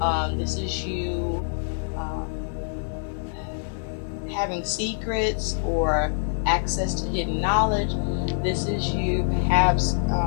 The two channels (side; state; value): right; silent; digital silence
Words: This is you having secrets or access to hidden knowledge. This is you perhaps